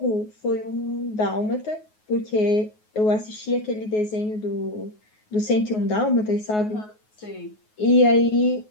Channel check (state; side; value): late; right; 9.4 ms